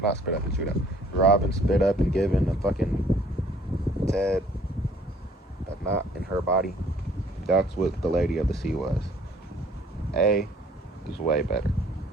not spit up and shoot out, Robin spit up and given a fucking Ted a knot in her body, that's what the Lady of the Sea was. A is way better.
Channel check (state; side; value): normal; both; correlation 0.57